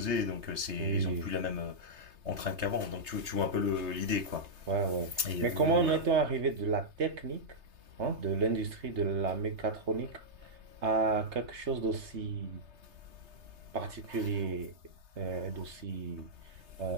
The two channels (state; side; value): late; left; 3.3 ms